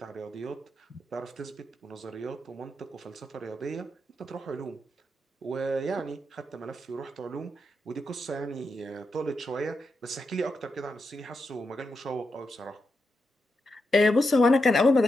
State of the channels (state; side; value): normal; both; correlation 0.85